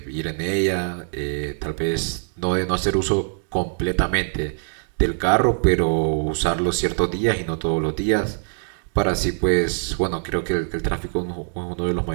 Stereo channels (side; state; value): left; silent; digital silence